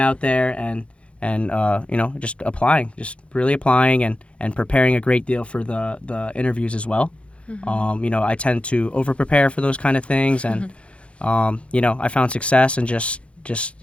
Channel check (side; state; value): right; late; 0.060 ms